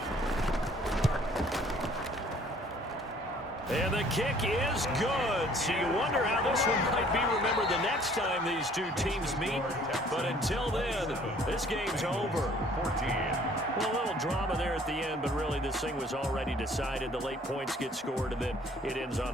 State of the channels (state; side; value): normal; both; correlation 0.57